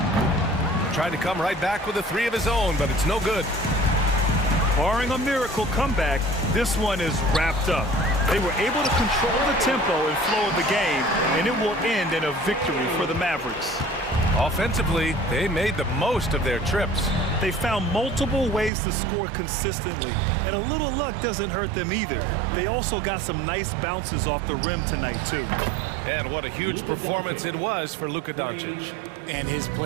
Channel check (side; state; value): left; drops out; at 18.7 s